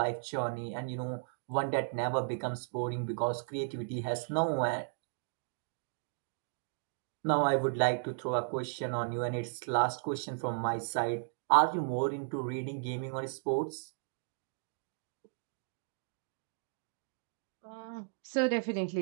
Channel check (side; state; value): left; silent; digital silence